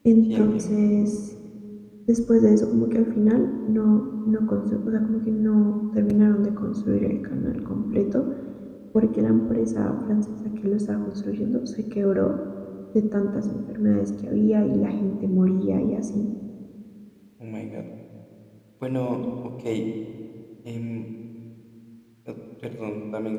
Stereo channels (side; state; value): both; identical; correlation 1.00